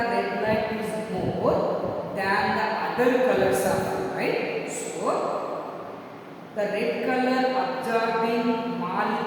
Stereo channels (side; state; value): both; identical; correlation 1.00